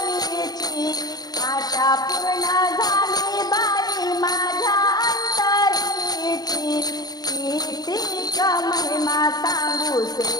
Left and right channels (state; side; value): late; right; 0.19 ms